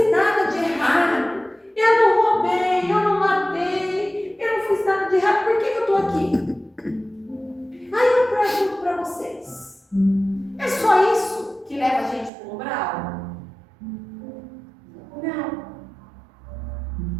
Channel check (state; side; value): drops out; left; at 12.3 s